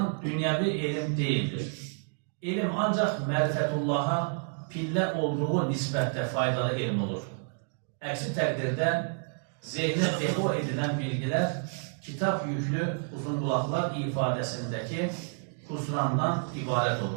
dünyevi ilim değildir. İlim ancak merifetullah'a pillə olduğu nisbətdə faydalı elm olur. Əksi təqdirdə zehnə depo edilən bilgilər kitab yüklü uzunqulaqlar ifadəsindəki husrandan ibarət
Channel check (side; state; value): left; silent; 56 dB below the other